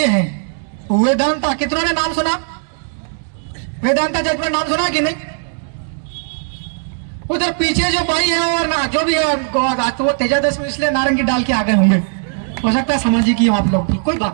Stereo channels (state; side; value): silent; left; 57 dB below the other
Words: हैं। वेदांता, कितनों ने नाम सुना? वेदांता जजमेंट नाम सुना कि नहीं? उधर पीछे जो भाई है और ना जो भी है तो वो तेजादश में इसलिए नारंगी डाल के आ गए होंगे, हो सकता है सामाजिक ही आप लोग भी, कोई